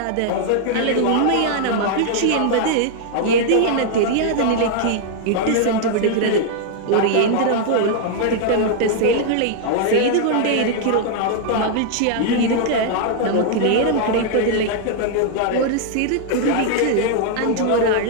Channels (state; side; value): different; both; correlation 0.00